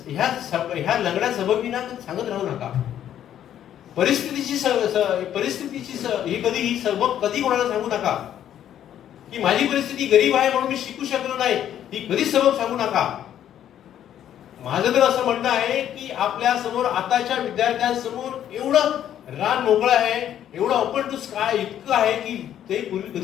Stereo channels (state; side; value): quieter; right; 10.6 dB